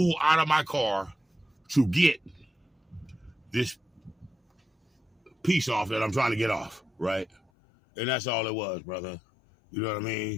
out of my car to get this piece off that I'm trying to get off, right? And that's all it was, brother. You know what I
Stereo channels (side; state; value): right; drops out; at 7.4 s